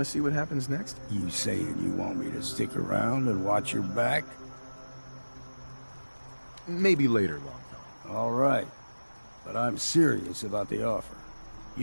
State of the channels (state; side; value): inverted; both; correlation -1.00